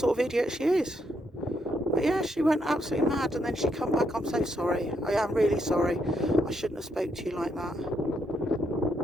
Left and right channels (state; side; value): normal; both; correlation 0.77